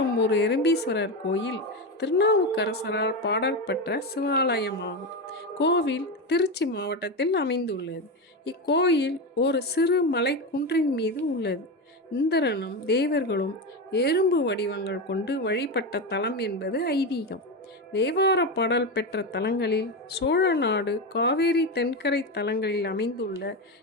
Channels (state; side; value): normal; both; correlation 0.15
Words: எறும்பீஸ்வரர் கோயில் திருநாவுக்கரசரால் பாடல் பெற்ற சிவாலயமாகும். கோவில் திருச்சி மாவட்டத்தில் அமைந்துள்ளது. இக்கோயில் ஒரு சிறு மலை குன்றின் மீது உள்ளது. இந்திரனும் தேவர்களும் எறும்பு வடிவங்கள் கொண்டு வழிபட்ட தலம் என்பது ஐதீகம். தேவார பாடல் பெற்ற தலங்களில் சோழ நாடு காவேரி தென்கரை தலங்களில் அமைந்துள்ள